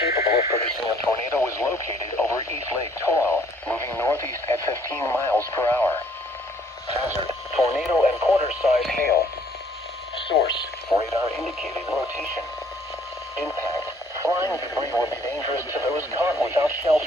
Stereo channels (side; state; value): both; normal; correlation 0.61